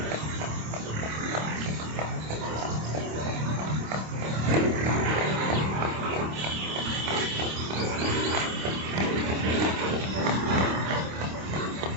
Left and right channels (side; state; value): left; late; 26 ms